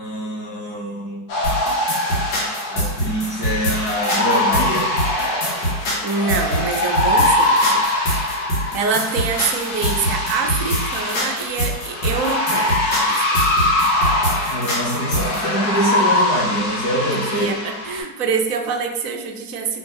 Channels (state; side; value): late; right; 4.6 ms